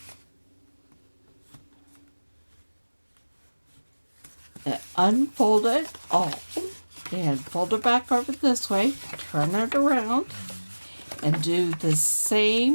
Unfold it all and fold it back over this way, turn it around, and do the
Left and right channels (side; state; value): both; inverted; correlation -1.00